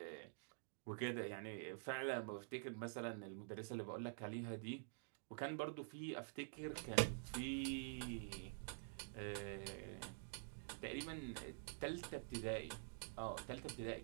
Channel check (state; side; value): silent; left; digital silence